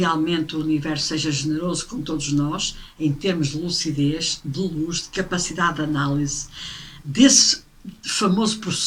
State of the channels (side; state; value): both; identical; correlation 1.00